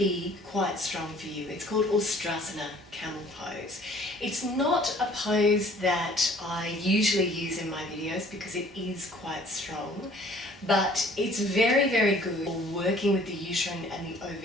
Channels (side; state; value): both; normal; correlation 0.54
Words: quite strong for you. It's called Ustrasana, camel pose. It's not a pose that I usually use in my videos because it is quite strong, but it's very, very good for working with the uterine and the